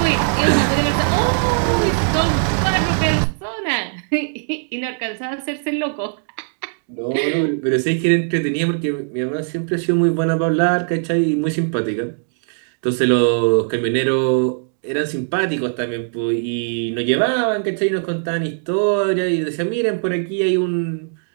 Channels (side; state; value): left; silent; digital silence